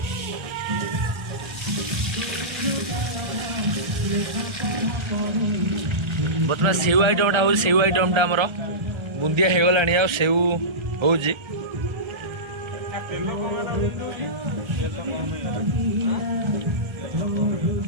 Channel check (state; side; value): late; left; 1.4 ms